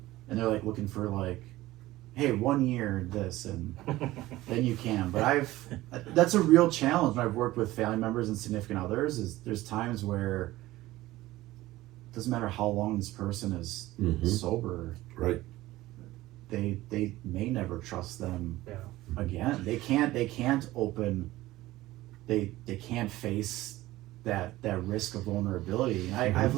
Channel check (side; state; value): left; quieter; 17.2 dB